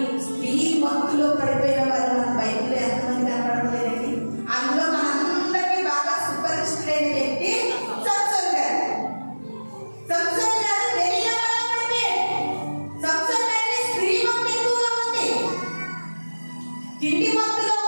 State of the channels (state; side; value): inverted; both; correlation -1.00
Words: స్త్రీ మత్తులో పడిపోయిన వారు మన బైబిల్లో ఎంతమంది కనపడలేదండి. అందులో మనందరికీ బాగా సుపరిచితులైన వ్యక్తి సంసోను గారు. సంసోను గారు దెలీలా వల్ల పడిపోయాడు. సంసోను గారికి స్త్రీ మత్తు ఎక్కువగా ఉంది. తిండి మత్తులో